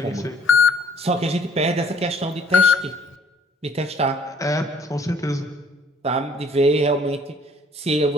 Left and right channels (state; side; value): normal; both; correlation 0.58